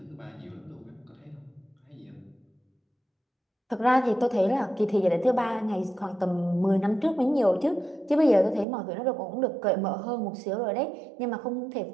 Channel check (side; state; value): left; drops out; at 8.7 s